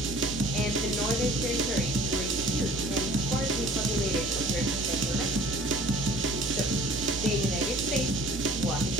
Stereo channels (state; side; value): noise; right; hum, 13 dB below the sound